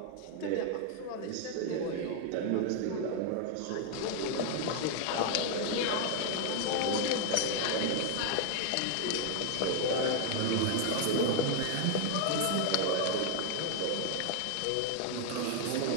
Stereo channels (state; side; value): different; both; correlation 0.00